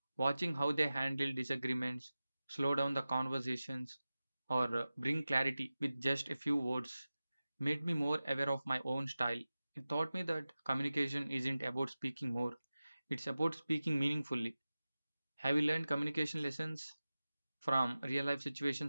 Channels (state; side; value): inverted; both; correlation -0.96